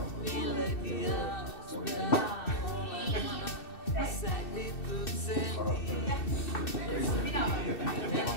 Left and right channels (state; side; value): late; right; 2.6 ms